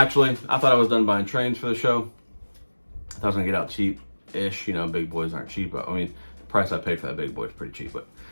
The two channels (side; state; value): both; inverted; correlation -1.00